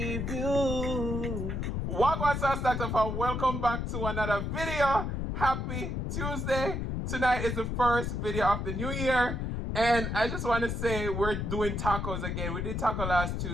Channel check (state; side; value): noise; left; rumble, 2 dB below the sound